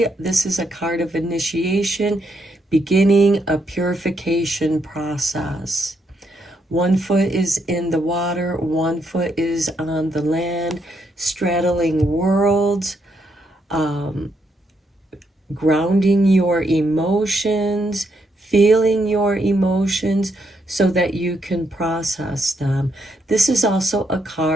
This is a card of initiation, beginning a purification process. One foot is in the water, one foot is on the land, straddling worlds, grounding your emotions, feeling your emotions so that you can process them. This is also a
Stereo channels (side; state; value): both; normal; correlation 0.77